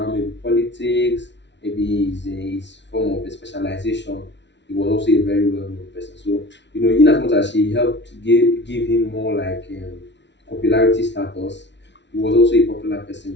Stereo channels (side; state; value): right; late; 0.51 ms